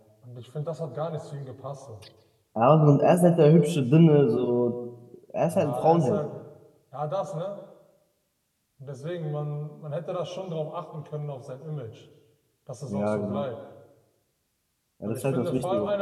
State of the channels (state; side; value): identical; both; correlation 1.00